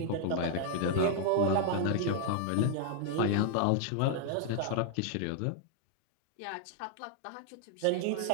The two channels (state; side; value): different; both; correlation 0.00